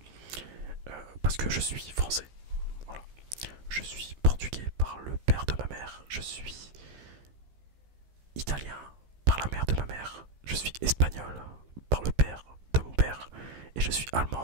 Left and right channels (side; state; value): left; late; 15 ms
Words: Parce que je suis français. Voilà. Je suis portugais par le père de ma mère. Je suis italien par la mère de ma mère. Je suis espagnol par le père de mon père. Et je suis